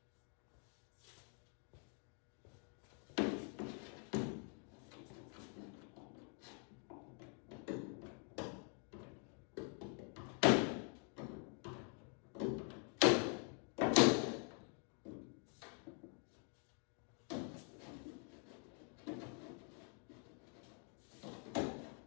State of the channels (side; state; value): right; quieter; 39.2 dB